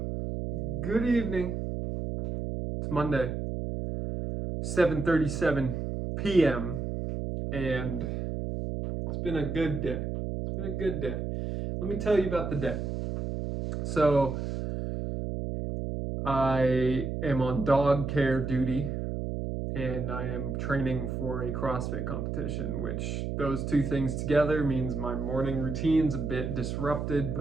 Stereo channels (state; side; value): noise; right; hum, 3 dB below the sound